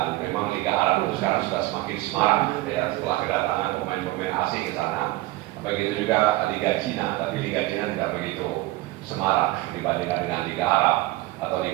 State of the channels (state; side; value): quieter; left; 18.7 dB